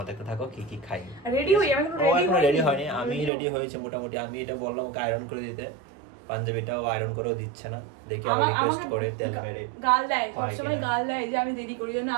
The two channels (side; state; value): left; drops out; at 3.3 s